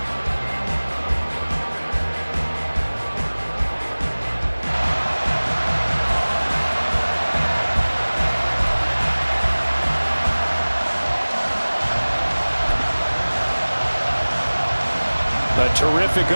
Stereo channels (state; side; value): inverted; both; correlation -1.00